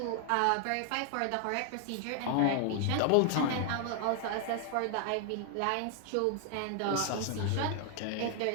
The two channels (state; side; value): different; both; correlation 0.00